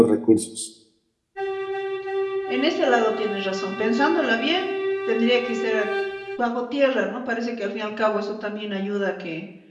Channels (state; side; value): identical; both; correlation 1.00